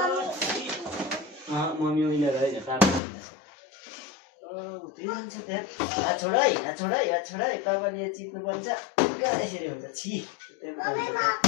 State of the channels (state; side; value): drops out; right; at 3.0 s